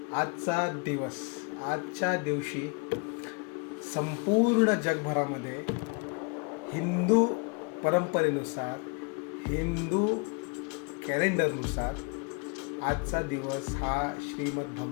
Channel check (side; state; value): right; quieter; 33.8 dB